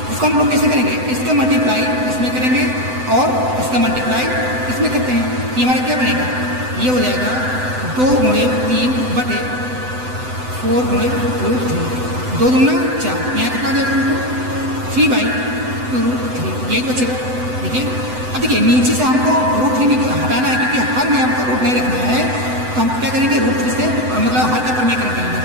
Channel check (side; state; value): left; late; 7.9 ms